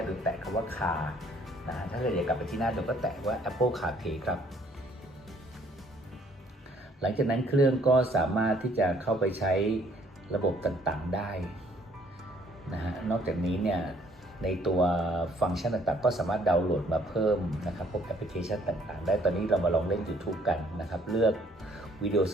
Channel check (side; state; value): both; normal; correlation 0.62